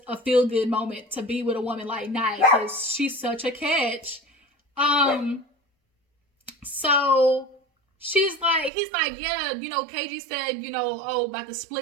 a feel-good moment to be with a woman like Naya because she's such a catch. So he's like, yeah, you know, KG said, you know, oh, about the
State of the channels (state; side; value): drops out; left; at 8.7 s